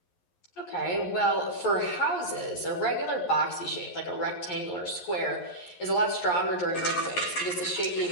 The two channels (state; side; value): late; right; 11 ms